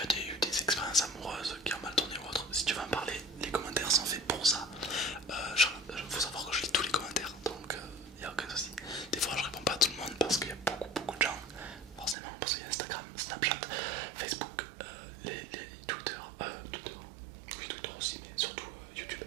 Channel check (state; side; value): drops out; left; at 12.2 s